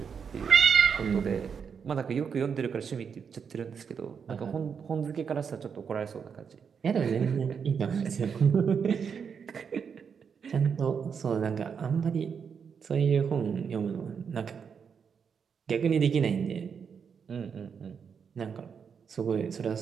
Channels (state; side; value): quieter; left; 6.6 dB